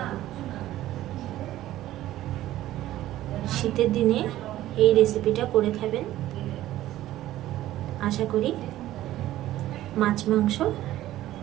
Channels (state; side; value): quieter; left; 14.4 dB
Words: শীতের দিনে এই রেসিপিটা করে খাবেন, আশা করি মাছ মাংস